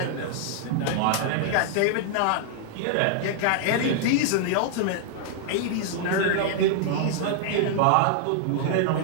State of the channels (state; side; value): different; both; correlation 0.00